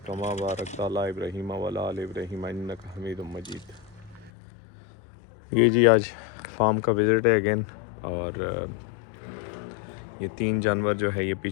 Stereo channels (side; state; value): right; drops out; at 4.3 s